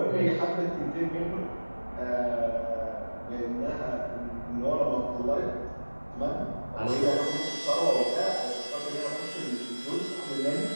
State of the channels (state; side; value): inverted; both; correlation -1.00